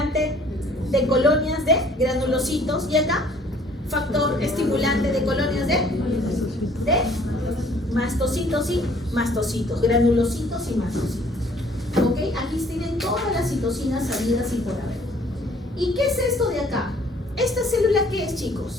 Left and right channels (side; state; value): both; normal; correlation 0.58